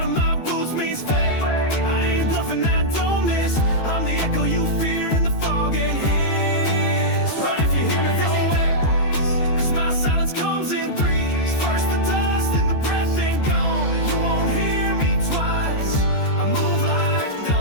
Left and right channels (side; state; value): right; late; 13 ms